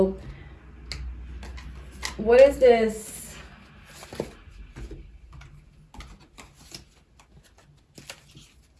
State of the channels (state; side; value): identical; both; correlation 1.00